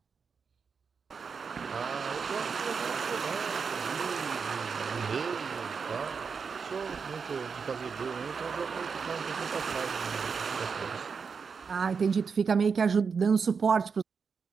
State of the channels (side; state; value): left; quieter; 5.7 dB